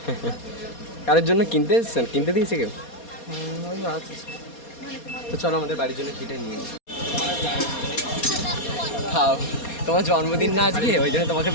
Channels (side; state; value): right; late; 4.2 ms